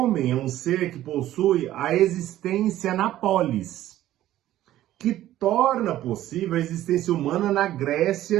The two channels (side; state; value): left; quieter; 13.7 dB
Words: é um ser que possui a existência na polis, que torna possível a existência humana na Grécia